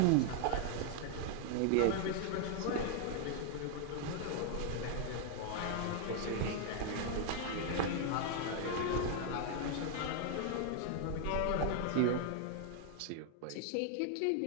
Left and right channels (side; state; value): both; different; correlation 0.00